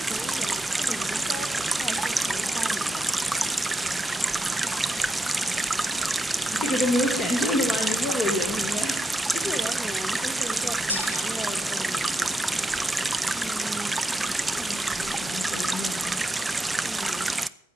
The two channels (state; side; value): normal; both; correlation 0.85